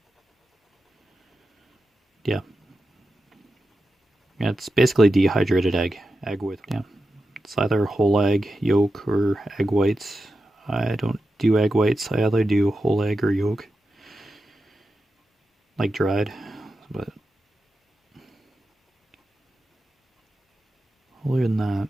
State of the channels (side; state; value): both; normal; correlation 0.91